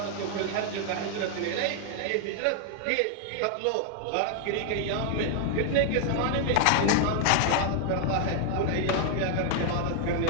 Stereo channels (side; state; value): both; different; correlation 0.00